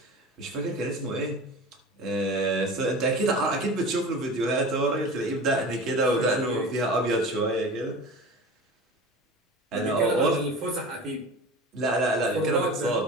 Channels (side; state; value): both; normal; correlation 0.35